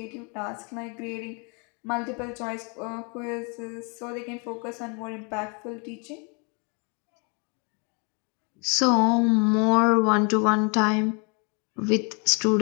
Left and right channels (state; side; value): quieter; right; 34.5 dB